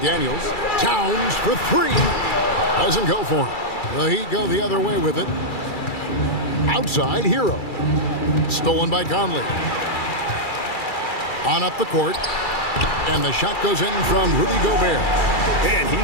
Towns for 3. Doesn't go for him. The Heat go the other way with it. Outside, Hero. Stolen by Conley. On up the court. And the shot goes in from Rudy Gobert. And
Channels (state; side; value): late; right; 2.3 ms